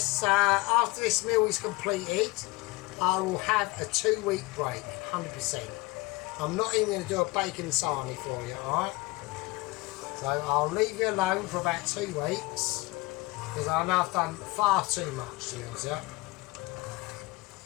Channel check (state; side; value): quieter; right; 22.3 dB